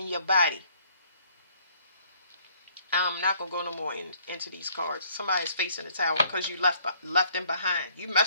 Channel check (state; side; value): inverted; both; correlation -0.61